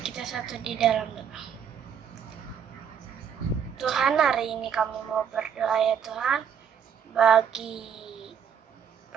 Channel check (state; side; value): quieter; left; 7.9 dB